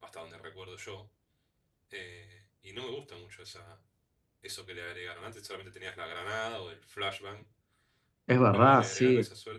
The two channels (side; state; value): both; identical; correlation 1.00